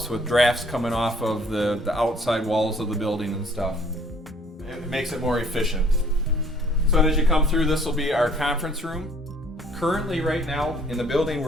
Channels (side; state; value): both; normal; correlation 0.59